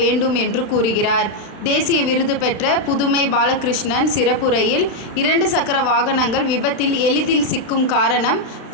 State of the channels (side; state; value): right; late; 35 ms